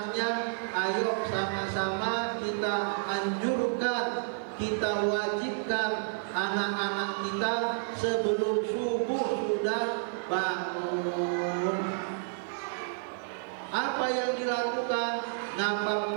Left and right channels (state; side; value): silent; left; 58 dB below the other